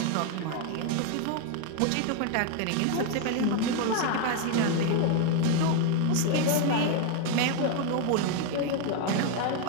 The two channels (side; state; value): both; different; correlation 0.00